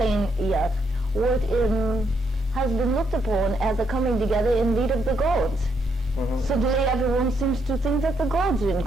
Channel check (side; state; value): both; normal; correlation 0.76